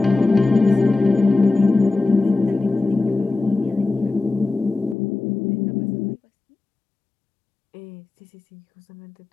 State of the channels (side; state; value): right; drops out; at 5.0 s